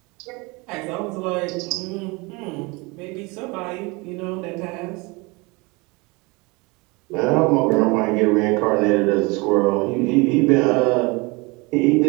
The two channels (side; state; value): left; quieter; 26.5 dB